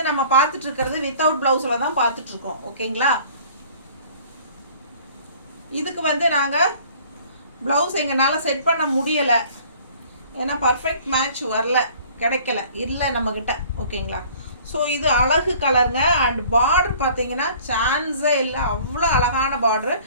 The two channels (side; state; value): both; inverted; correlation -0.51